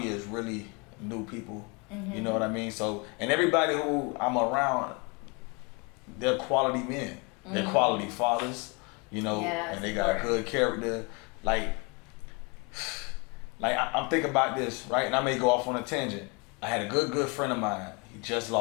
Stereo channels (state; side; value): quieter; right; 30.7 dB